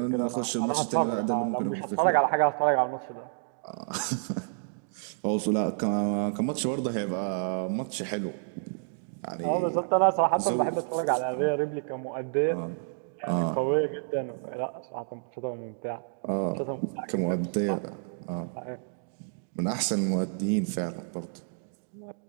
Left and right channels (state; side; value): silent; left; digital silence